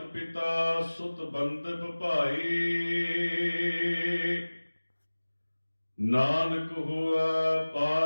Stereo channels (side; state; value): both; inverted; correlation -1.00